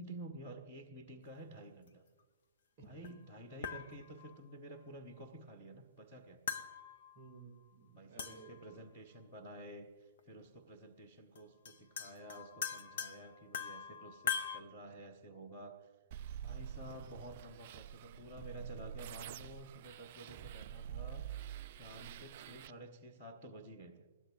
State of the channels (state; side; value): inverted; both; correlation -0.33